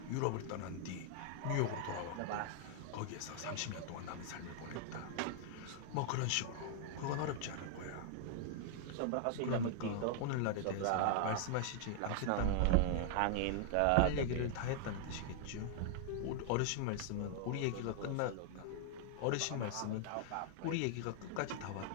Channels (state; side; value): different; both; correlation 0.00